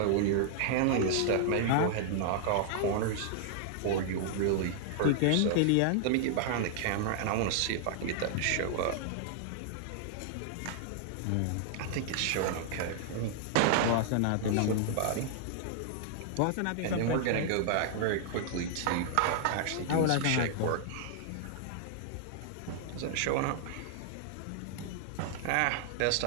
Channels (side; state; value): both; different; correlation -0.01